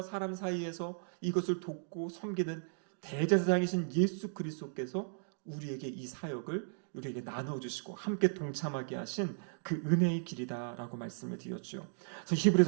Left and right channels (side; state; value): left; silent; digital silence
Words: 사람 사이에서 이것을 돕고 섬기는 대제사장이신 예수 그리스도께서 우리에게 이 사역을 우리에게 나눠주시고 함께 동참하게 하신 그 은혜의 길이다라고 말씀을 드렸죠. 그래서